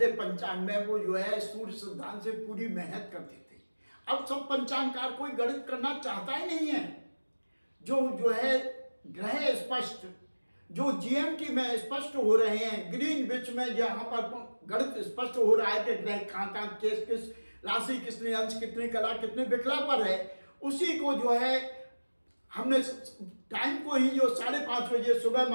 पंचांग में वो जो है सूर्य सिद्धांत से पूरी मेहनत करते थे। अब सब पंचांगकार कोई गणित करना चाहता ही नहीं है। जो है ग्रह स्पष्ट, जो जीएमटी में स्पष्ट हो रहे हैं, ग्रीनविच में जहाँ पर गणित स्पष्ट हो रहा है कि ग्रह कहाँ किस राशि, कितने अंश, कितने कला, कितने विकला पर है, उसी को जो है हमने टाइम को ही जो 5:30 बजे सुबह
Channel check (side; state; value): both; inverted; correlation -1.00